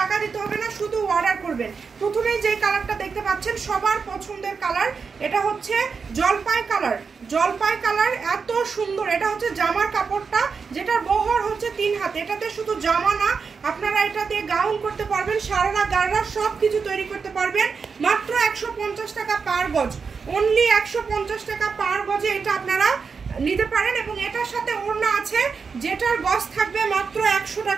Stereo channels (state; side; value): quieter; left; 5.4 dB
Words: দিতে হবে না, শুধু অর্ডার করবেন। প্রথমেই যেই কালারটা দেখতে পাচ্ছেন সবার পছন্দের কালার, এটা হচ্ছে জলপাই কালার। জলপাই কালার এত সুন্দর। এটা হচ্ছে জামার কাপড়টা, যেটার বহর হচ্ছে 3 হাত। এটাতে শুধু জামা না, আপনারা এটা দিয়ে গাউন করতে পারবেন, সারারা গাররা সব কিছু তৈরি করতে পারবেন। মাত্র 150 টাকা পার গজ, অনলি 150 টাকা পার গজে এটা আপনারা নিতে পারেন। এবং এটার সাথে ওড়না আছে, যেটার গজ থাকবে মাত্র 100